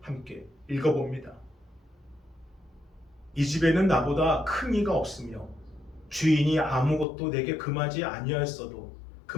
함께 읽어봅니다. 이 집에는 나보다 큰 이가 없으며 주인이 아무것도 내게 금하지 아니하였어도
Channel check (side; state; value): right; drops out; at 7.1 s